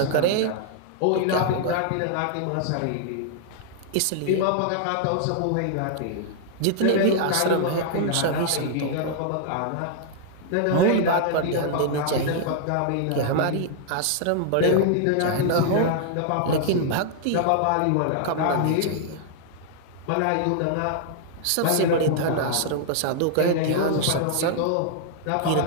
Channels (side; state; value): both; different; correlation -0.01